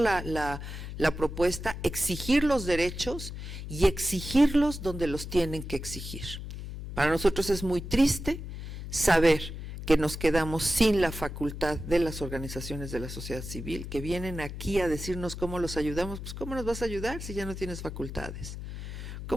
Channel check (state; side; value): noise; left; hum, 8 dB below the sound